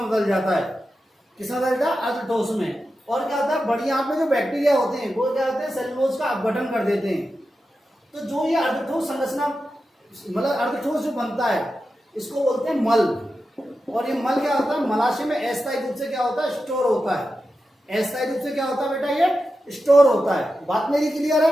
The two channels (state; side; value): normal; both; correlation 0.91